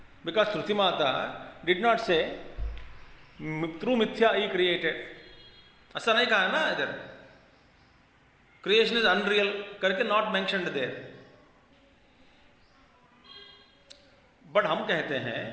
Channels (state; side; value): identical; both; correlation 1.00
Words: Because Shruti mata did not से थ्रू मिथ्या ही क्रिएटेड, ऐसा नहीं कहा ना इधर। क्रिएशन इज अनरियल करके नॉट मेंशन्ड देयर। बट हम कहते हैं